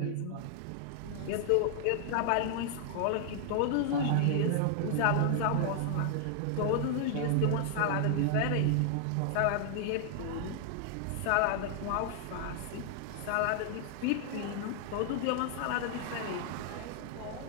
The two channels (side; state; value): both; different; correlation 0.00